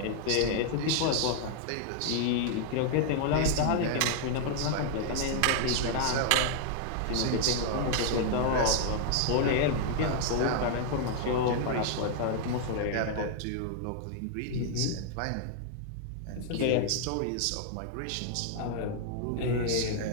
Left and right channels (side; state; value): both; different; correlation 0.00